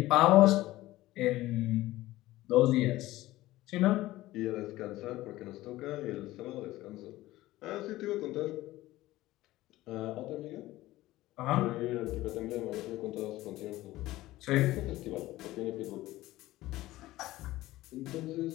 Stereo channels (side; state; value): right; quieter; 16.9 dB